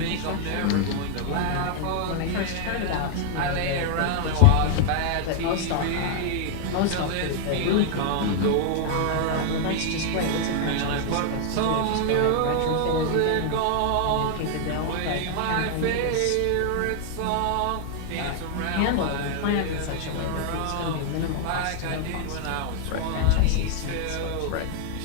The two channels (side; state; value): both; different; correlation 0.00